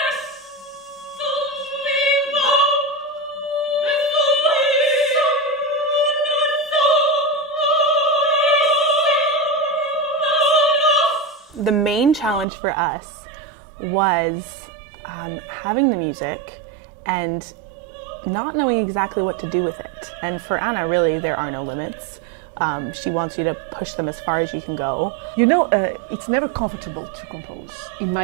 The main challenge for us was having the music and not knowing exactly what to do with it. And for Anna, really, there are no limits. She wants you to push them as far as you can go. You know, it's never comfortable to compose, in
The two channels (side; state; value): left; drops out; at 12.5 s